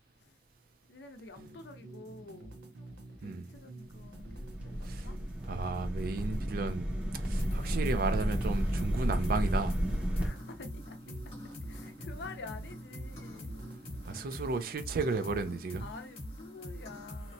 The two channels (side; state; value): both; normal; correlation 0.72